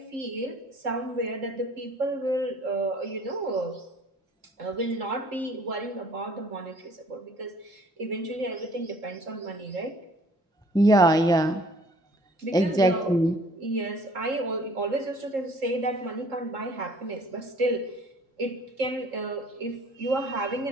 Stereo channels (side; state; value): both; normal; correlation 0.55